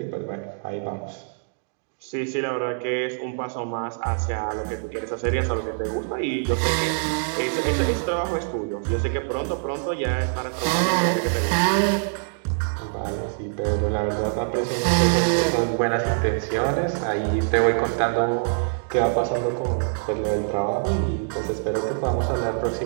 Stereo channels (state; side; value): silent; left; digital silence